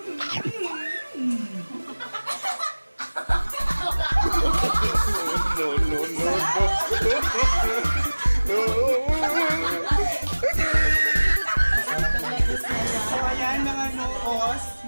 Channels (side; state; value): both; inverted; correlation -1.00